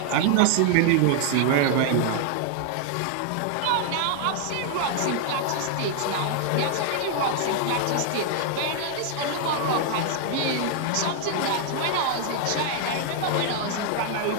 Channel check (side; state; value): both; different; correlation 0.00